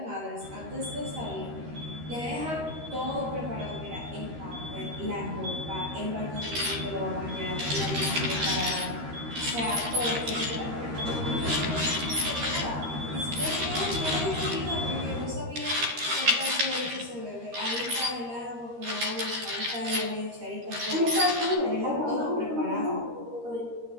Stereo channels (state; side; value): late; left; 13 ms